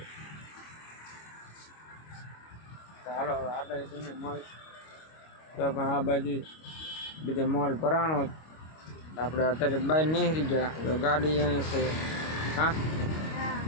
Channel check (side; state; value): right; late; 25 ms